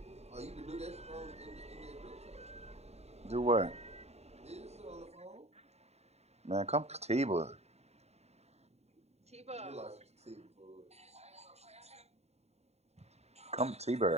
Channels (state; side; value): late; left; 0.31 ms